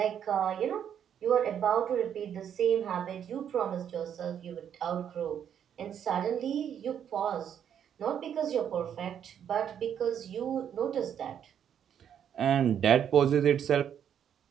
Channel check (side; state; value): left; quieter; 8.9 dB